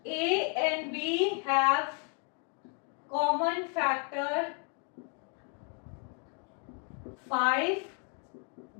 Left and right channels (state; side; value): quieter; right; 38.5 dB